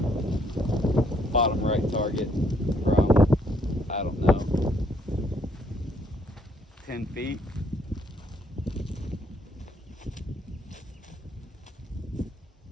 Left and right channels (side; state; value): both; normal; correlation 0.68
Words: Bottom right target from, I don't know, 10 feet.